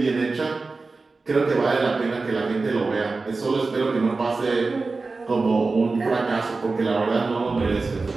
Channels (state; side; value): quieter; left; 3.8 dB